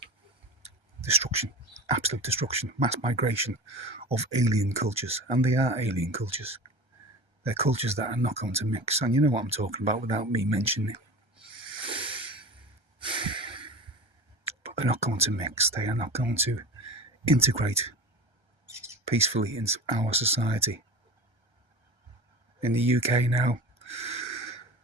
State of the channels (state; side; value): late; left; 1.3 ms